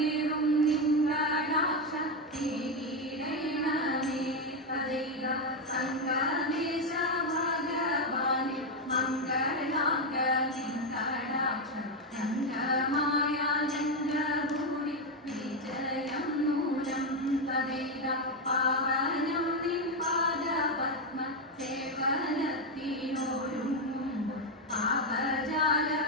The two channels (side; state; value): both; normal; correlation 0.06